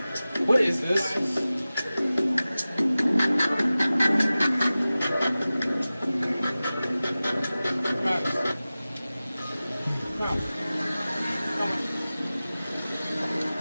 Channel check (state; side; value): inverted; both; correlation -0.96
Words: What is this?